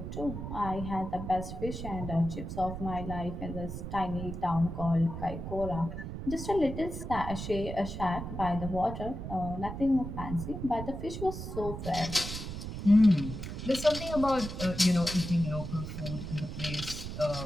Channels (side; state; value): right; noise; rumble, 7 dB below the sound